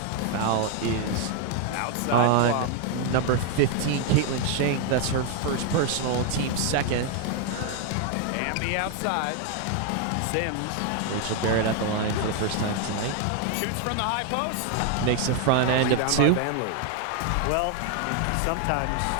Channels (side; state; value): both; different; correlation 0.00